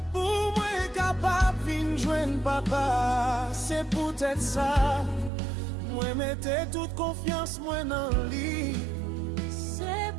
papa, c'est peut-être ça. Moi mettez toute confiance moi dans lui. C'est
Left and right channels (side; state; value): left; drops out; at 5.3 s